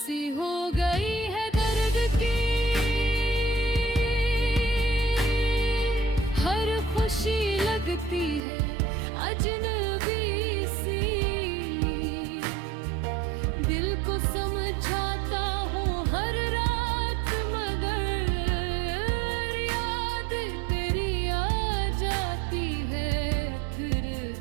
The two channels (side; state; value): left; drops out; at 8.4 s